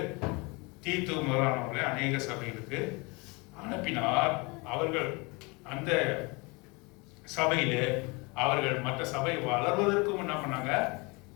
தீத்து முதலானவர்களை அநேக சபைகளுக்கு அனுப்பினார். அவர்கள் அந்த சபையிலே அவர்கள் மற்ற சபை வளர்வதற்கும் என்ன பண்ணாங்க?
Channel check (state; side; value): quieter; right; 27.7 dB